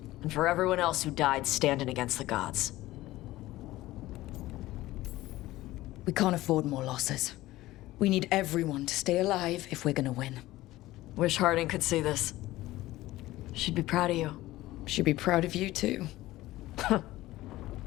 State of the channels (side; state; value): right; quieter; 16.9 dB